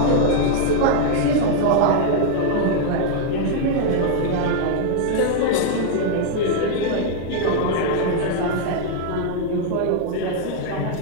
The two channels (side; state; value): both; different; correlation 0.00